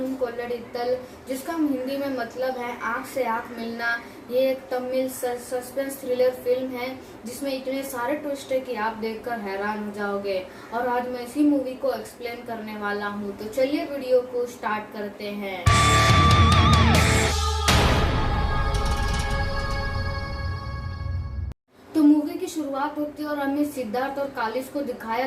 कोल्लडित्तल, जिसका हिंदी में मतलब है आंख से आंख मिलना। ये एक तमिल सस्पेंस थ्रिलर फिल्म है जिसमें इतने सारे ट्विस्ट है कि आप देखकर हैरान हो जाओगे। और आज मैं इसी मूवी को एक्सप्लेन करने वाला हूँ, तो चलिए वीडियो को स्टार्ट करते हैं। तो मूवी की शुरुआत होती है और हमें सिद्धार्थ और कालिस को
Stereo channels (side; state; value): both; identical; correlation 1.00